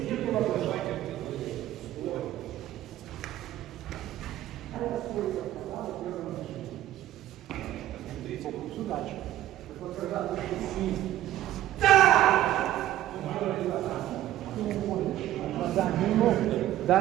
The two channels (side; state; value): left; quieter; 13.5 dB